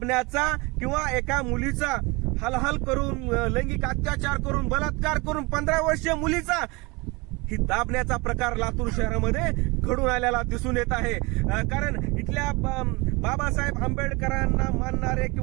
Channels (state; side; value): quieter; left; 26.0 dB